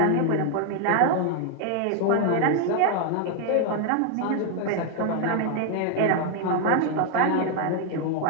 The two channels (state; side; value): different; both; correlation 0.00